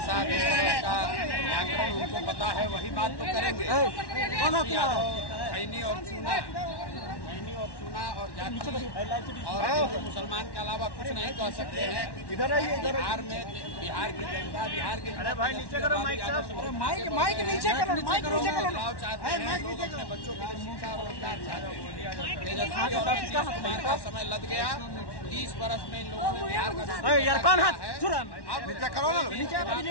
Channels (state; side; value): late; right; 1.1 ms